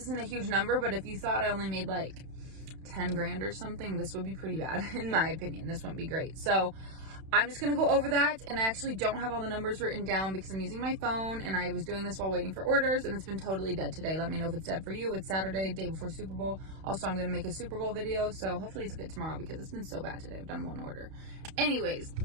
a huge number, but if you thought I only made like 10 grand or something, this would be pretty bad in my opinion. This wouldn't be great. So I'm just going to go over that, and I actually don't have all the numbers written down because I'm using my phone, and I was doing this while waiting for orders, and it's been totally dead today. Let me know if it's dead for you. It's Saturday, day before Super Bowl. Also, I'm going to make a Super Bowl video, so hopefully it's good tomorrow because it's been so bad today. I've done one order. Anyways,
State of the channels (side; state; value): left; late; 31 ms